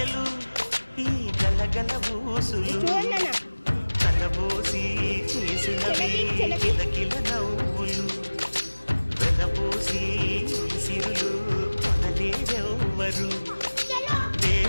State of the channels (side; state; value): both; inverted; correlation -1.00